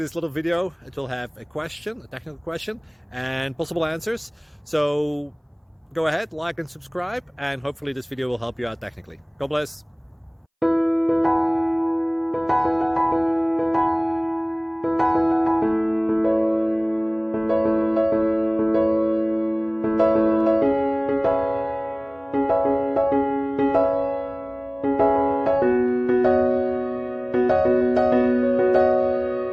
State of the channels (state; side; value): identical; both; correlation 1.00